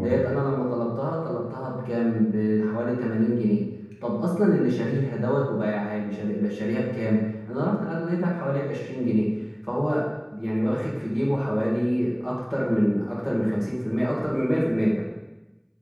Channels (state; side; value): identical; both; correlation 1.00